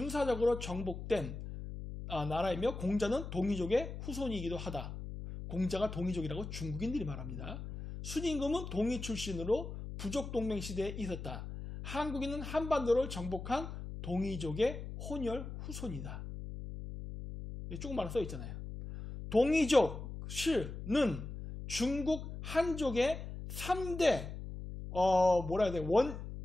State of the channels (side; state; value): left; noise; hum, 8 dB below the sound